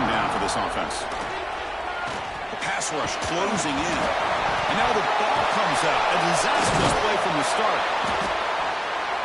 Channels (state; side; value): identical; both; correlation 1.00